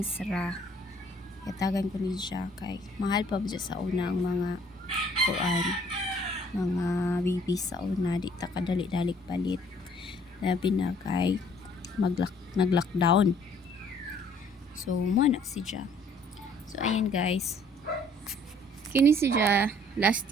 sra. Katagan ko ni siya kay mahal pa ba siya sa una ang mga kuan. Mga babies sa una. Di ta kadali-dalik palit. Labi na kay nag-lockdown. So, muna si siya. So, ayan guys. Kini si siya last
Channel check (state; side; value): normal; both; correlation 0.59